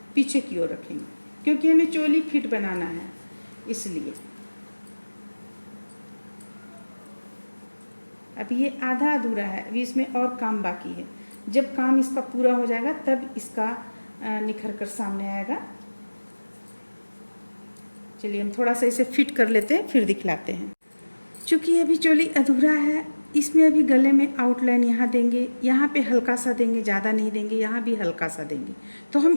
पीछे की ओर रखेंगे। क्योंकि हमें चोली फिट बनाना है इसलिए। अभी ये आधा अधूरा है, अभी इसमें और काम बाकी है। जब काम इसका पूरा हो जाएगा तब इसका निखर कर सामने आएगा। चलिए हम थोड़ा सा इसे फिट कर लेते हैं, फिर दिखलाते हैं। चूँकि अभी चोली अधूरा है, इसमें अभी गले में आउटलाइन यहाँ देंगे, यहाँ पे हल्का सा देंगे, ज़्यादा नहीं देंगे, यहाँ भी हल्का सा देंगे। तो हम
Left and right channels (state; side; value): inverted; both; correlation -1.00